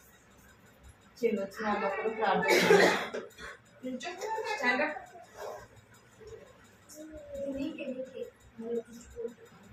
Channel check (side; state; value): both; identical; correlation 1.00